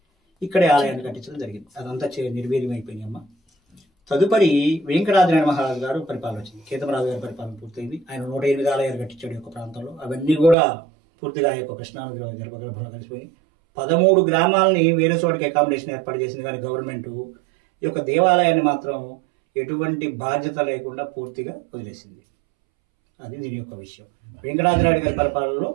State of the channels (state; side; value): drops out; left; at 10.6 s